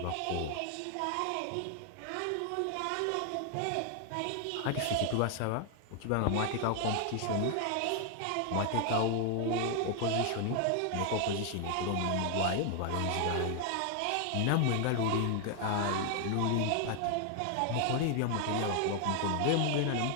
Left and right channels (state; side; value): different; both; correlation 0.00